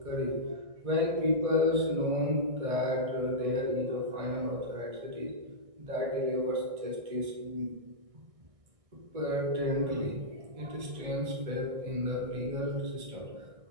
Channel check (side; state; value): left; late; 1.6 ms